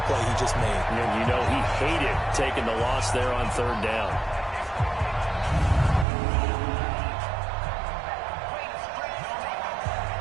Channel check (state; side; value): drops out; left; at 6.1 s